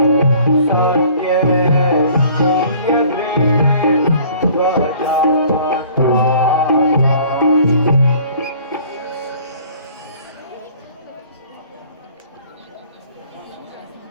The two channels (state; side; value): inverted; both; correlation -0.52